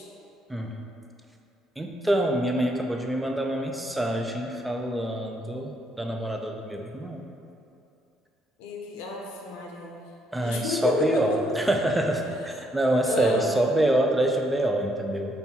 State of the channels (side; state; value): both; normal; correlation 0.73